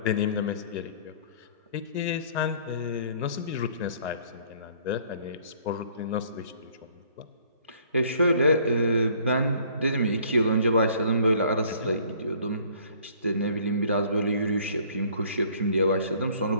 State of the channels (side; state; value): both; inverted; correlation -0.57